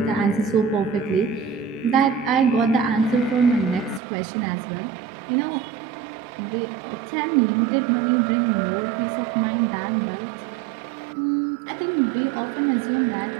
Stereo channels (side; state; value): left; drops out; at 4.0 s